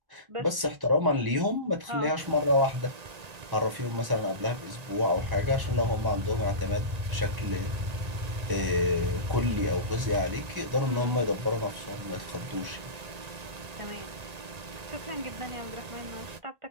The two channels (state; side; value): late; left; 1.9 ms